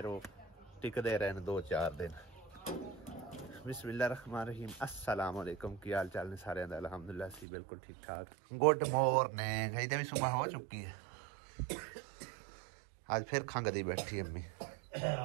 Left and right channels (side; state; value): left; drops out; at 7.5 s